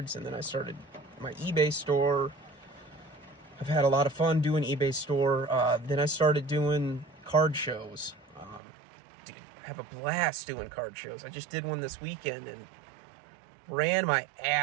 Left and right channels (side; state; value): left; drops out; at 8.6 s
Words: and then I started my eBay store. I've had a lot of fun doing eBay store. Then I started doing card shows. Dude, I have a blast doing card shows. I just did one this weekend and ran my